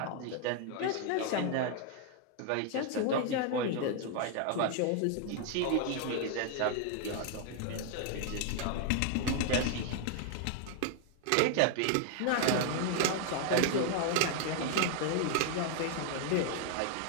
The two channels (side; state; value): both; different; correlation 0.00